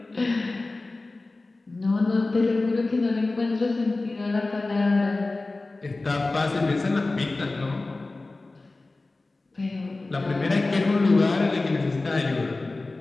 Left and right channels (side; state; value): right; quieter; 3.2 dB